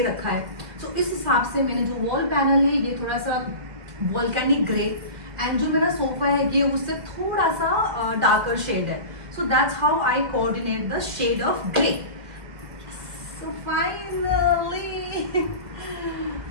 रखा है. सो इस हिसाब से मैंने जो वॉल पैनल है ये थोड़ा सा वॉल्केनिक ग्रे एंड जो मेरा सोफा है ये उससे थोड़ा सा डार्कर शेड है. So that's how I coordinate the shade of grey. So finally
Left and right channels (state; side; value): late; left; 2.0 ms